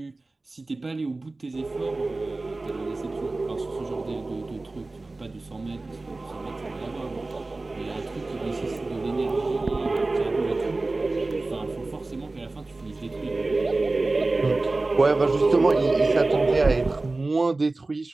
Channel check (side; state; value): left; quieter; 3.2 dB